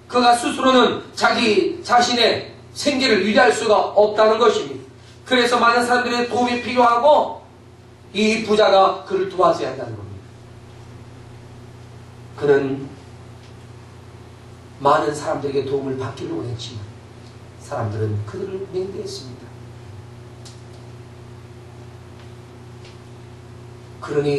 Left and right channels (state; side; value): identical; both; correlation 1.00